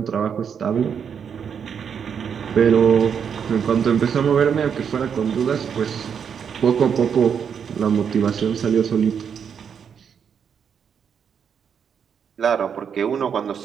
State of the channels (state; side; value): quieter; left; 7.3 dB